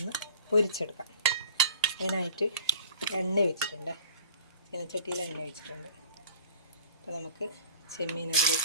പൊരിച്ചെടുക്കാം. അതിനായിട്ട് എണ്ണ ഒഴിച്ചിട്ടുണ്ട്, ചീനച്ചട്ടിയിൽ എണ്ണ ഒഴിച്ചിട്ടുണ്ട്. അപ്പോൾ നമുക്ക് ചെമ്മീൻ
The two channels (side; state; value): both; inverted; correlation -0.45